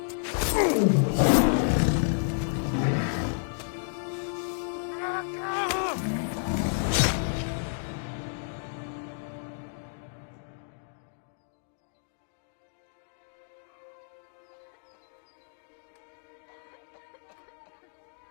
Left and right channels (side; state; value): right; silent; digital silence